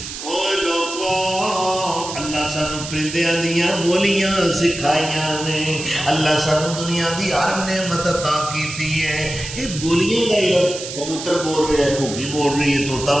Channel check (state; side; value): noise; right; hiss, 9 dB below the sound